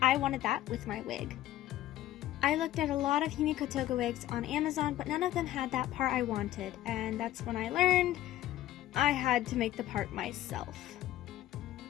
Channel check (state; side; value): quieter; right; 13.9 dB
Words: I wanted that with my wig. I looked at a lot of Himiko toga wigs on Amazon, but none of them had that part I wanted, and that's when I learned I had to make the part myself.